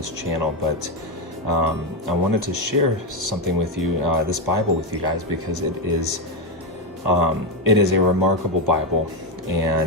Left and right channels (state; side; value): normal; both; correlation 0.07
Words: channel, but I wanted to share something with you, this Bible with you guys, because it is a remarkable Bible,